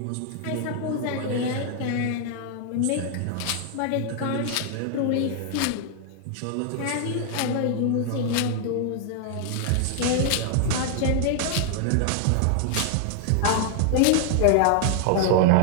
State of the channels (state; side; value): different; both; correlation 0.00